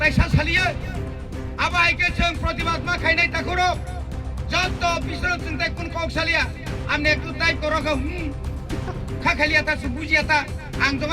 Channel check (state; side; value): identical; both; correlation 1.00